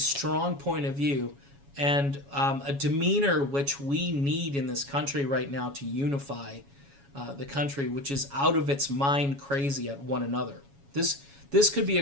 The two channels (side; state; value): left; late; 7.2 ms